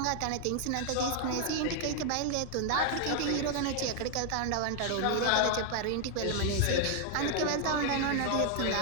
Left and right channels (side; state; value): both; different; correlation 0.00